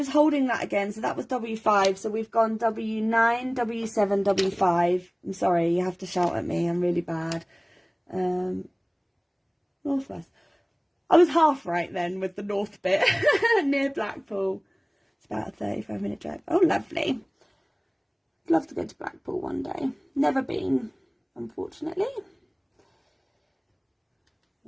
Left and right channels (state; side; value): identical; both; correlation 1.00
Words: holding that again. So that was W5. So we've gone W9, W7, W5. I'm sorry, you have to shout at me. I'm really bad. Northwest. I was half right then with the north bit near Blackpool. It's about a 35-minute drive. Oh, lovely. I'd love to go to Blackpool one day. Never been, unfortunately.